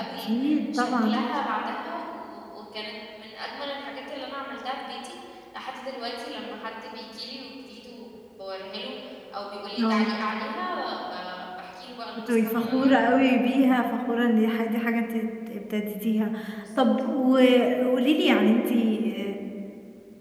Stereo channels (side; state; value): both; identical; correlation 1.00